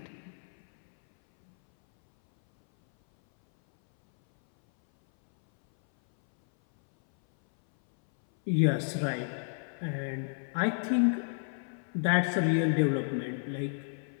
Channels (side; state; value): right; silent; 57 dB below the other